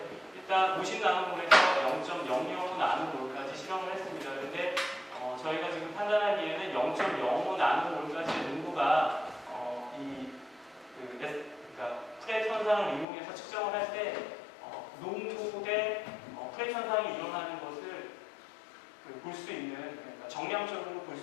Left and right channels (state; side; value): drops out; right; at 13.1 s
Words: 일단 50나노몰에서 0.00 나노몰까지 실험을 했습니다. 그런데 저희가 지금 판단하기에는 0.05 나노몰까지의 농도가 그러니까 프렛 현상을 이용해서 측정을 할 때 농도 대 프렛 현상이 일어나는 것을 볼 수 있는, 그러니까 정량적으로 볼